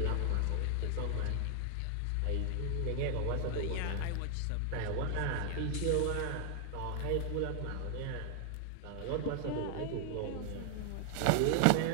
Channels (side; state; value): both; different; correlation 0.00